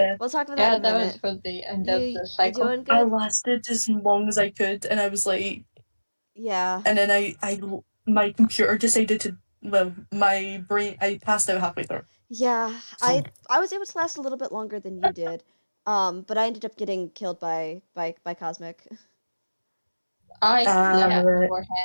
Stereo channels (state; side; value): inverted; both; correlation -1.00